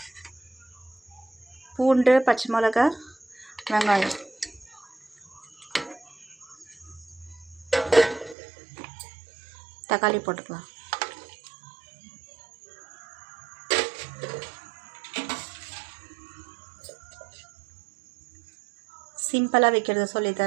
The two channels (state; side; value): drops out; left; at 8.3 s